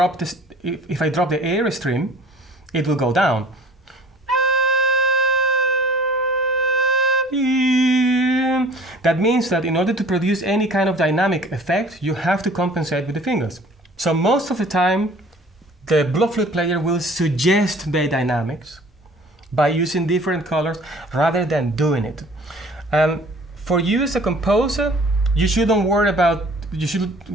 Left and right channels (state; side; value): normal; both; correlation 0.50